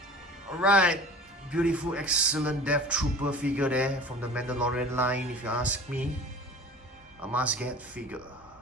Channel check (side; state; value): both; normal; correlation 0.41